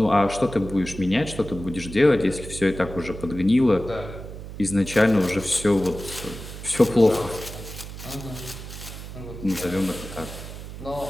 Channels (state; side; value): noise; right; hum, 11 dB below the sound